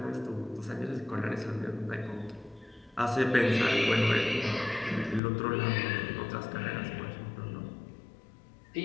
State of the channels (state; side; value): drops out; right; at 5.2 s